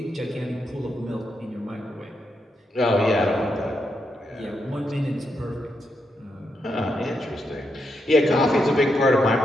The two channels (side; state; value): both; normal; correlation 0.82